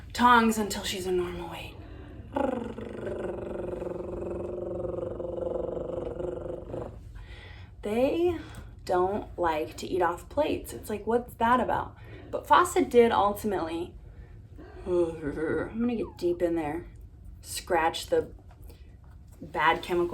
Tongs until she's a normal weight. They don't like to eat off plates. It's like, what's that about? But Fawcett did ultimately, I'm gonna get deep in there, scratch the bad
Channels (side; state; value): both; identical; correlation 1.00